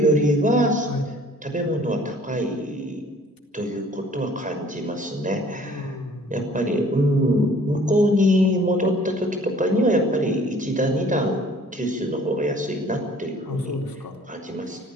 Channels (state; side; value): normal; both; correlation 0.54